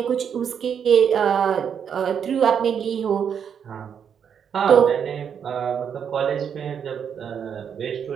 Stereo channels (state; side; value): quieter; left; 7.7 dB